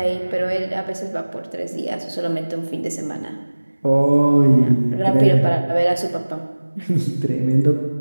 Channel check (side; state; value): both; inverted; correlation -1.00